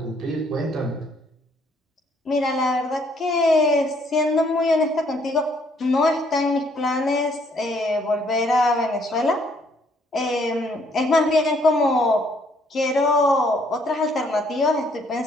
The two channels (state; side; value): normal; both; correlation 0.67